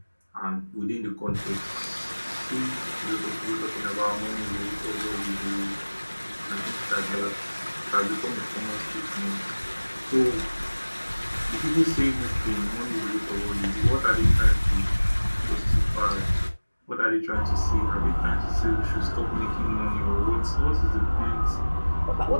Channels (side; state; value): both; inverted; correlation -1.00